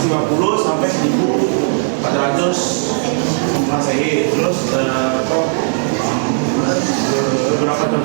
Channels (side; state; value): left; silent; 69 dB below the other